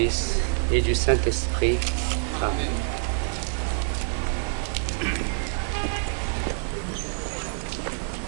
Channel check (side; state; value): left; silent; digital silence